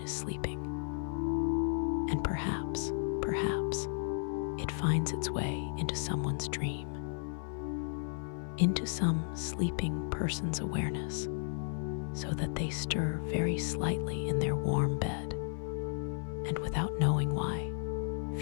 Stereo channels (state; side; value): silent; right; 55 dB below the other